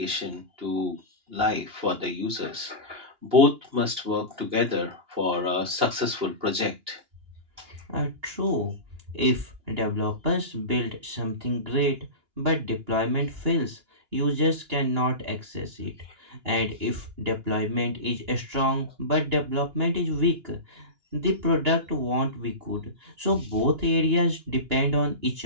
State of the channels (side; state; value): left; late; 2.9 ms